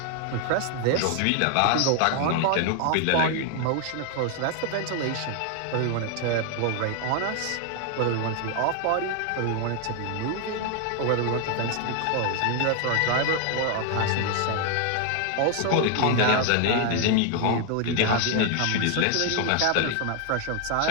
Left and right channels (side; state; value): both; different; correlation 0.00